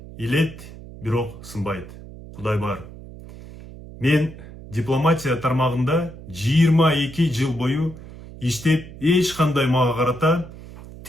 илет, бирок сынбайт. Кудай бар. Мен дипломатия тармагында 22 жыл бою иштеп, эч кандай мага карата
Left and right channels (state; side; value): noise; right; hum, 16 dB below the sound